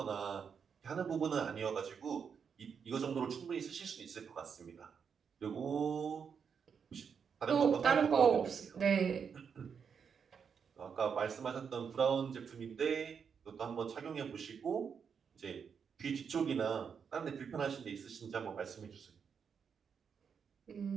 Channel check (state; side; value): quieter; left; 6.7 dB